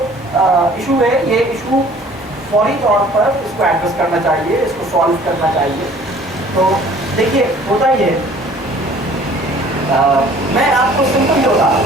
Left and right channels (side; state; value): both; normal; correlation 0.52